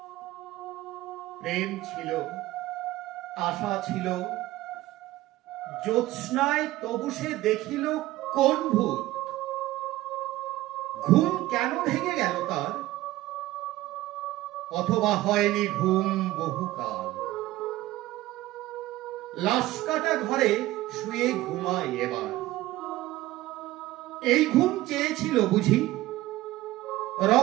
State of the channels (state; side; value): quieter; left; 16.8 dB